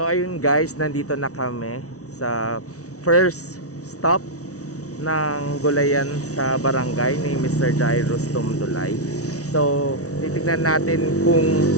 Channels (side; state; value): right; late; 0.66 ms